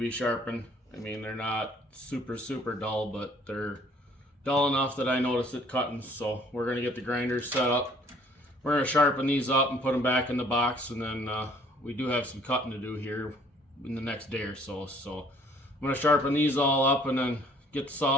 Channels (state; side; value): normal; both; correlation 0.59